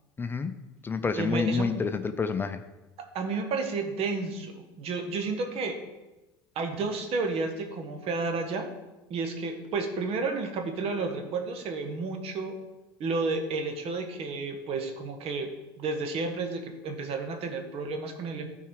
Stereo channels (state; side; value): normal; both; correlation 0.43